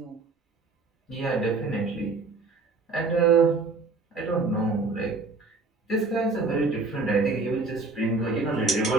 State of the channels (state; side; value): quieter; left; 3.7 dB